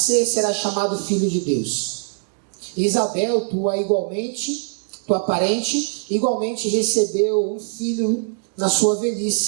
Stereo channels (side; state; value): left; silent; digital silence